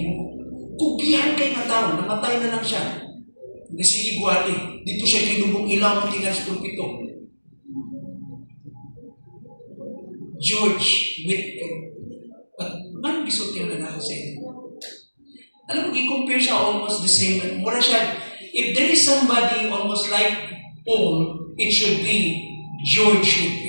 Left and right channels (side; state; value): both; inverted; correlation -1.00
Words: Kugihan kay nga tao, namatay na lang siya. Sige guwali, dito siya kinubong ilaw ng tingas pulpito. George Whitefield. At man gisot yung lalaki sa inyo. Alam mo, i-compare siya almost the same. Mura siya, if there is somebody almost like Paul, it should be George